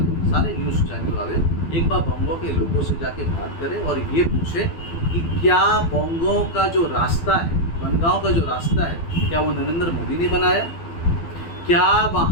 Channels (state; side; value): late; right; 12 ms